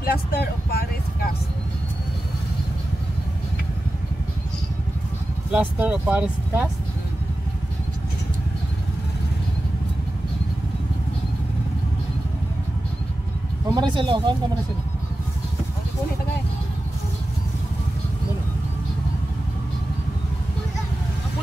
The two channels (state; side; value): normal; both; correlation 0.93